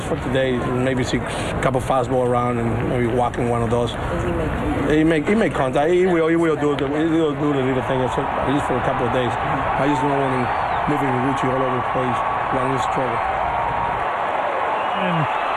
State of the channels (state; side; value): identical; both; correlation 1.00